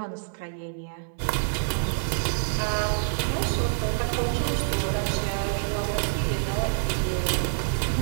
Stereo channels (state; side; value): silent; left; digital silence